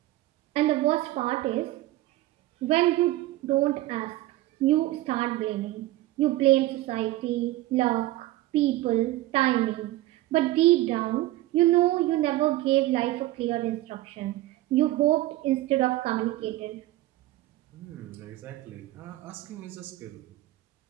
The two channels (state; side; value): quieter; left; 16.7 dB